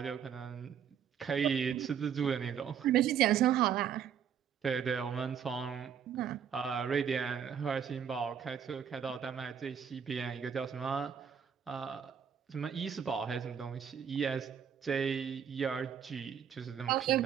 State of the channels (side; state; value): left; quieter; 8.1 dB